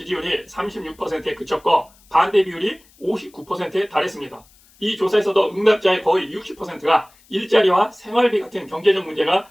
36%에 그쳤고 반대 비율이 59%에 달했습니다. 이 조사에서도 응답자의 거의 60%가 일자리와 생활비 같은 경제적 문제가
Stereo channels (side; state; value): left; noise; hiss, 30 dB below the sound